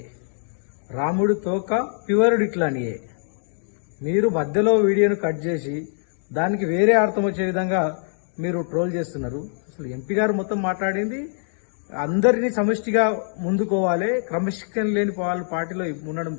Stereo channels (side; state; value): right; silent; digital silence